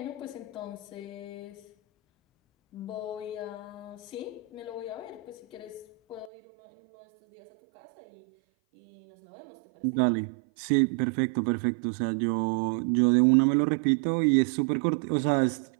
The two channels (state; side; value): drops out; left; at 6.3 s